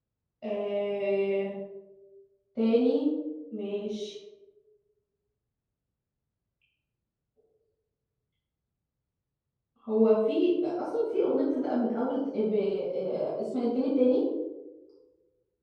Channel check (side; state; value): both; identical; correlation 1.00